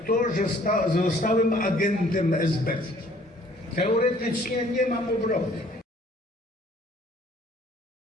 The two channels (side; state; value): both; normal; correlation 0.57